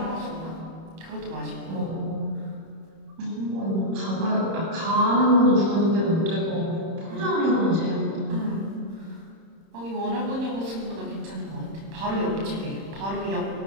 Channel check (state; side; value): late; left; 31 ms